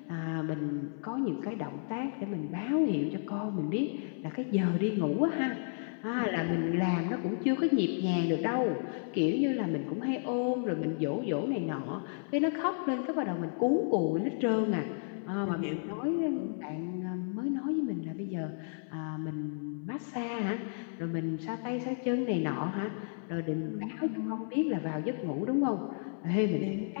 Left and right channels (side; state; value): right; silent; 56 dB below the other